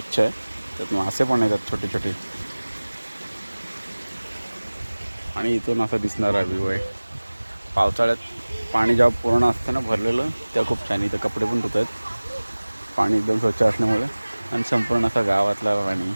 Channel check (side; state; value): both; inverted; correlation -1.00